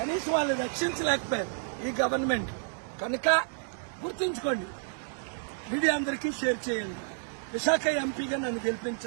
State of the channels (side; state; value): left; silent; digital silence